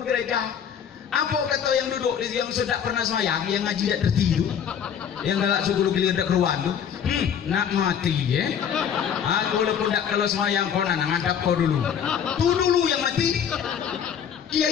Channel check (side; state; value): right; quieter; 8.2 dB